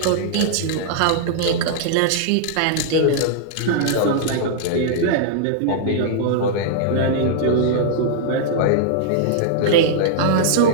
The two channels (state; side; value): different; both; correlation -0.01